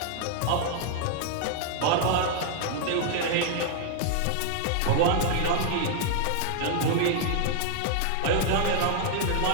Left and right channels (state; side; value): different; both; correlation 0.00